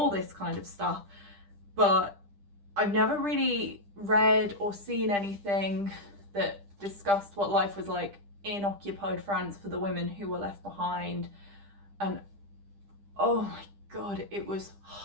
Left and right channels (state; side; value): late; left; 10 ms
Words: this kind of stuff. But I've never really read or seen anything that discussed what life was like in occupied France for the women who were left behind. And oh my God, it was